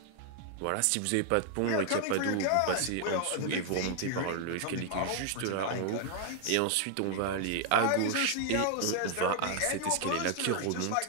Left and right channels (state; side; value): different; both; correlation 0.00